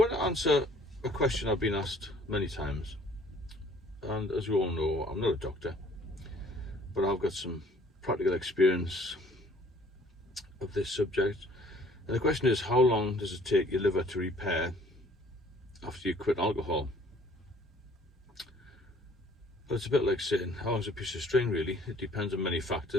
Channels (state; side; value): normal; both; correlation 0.56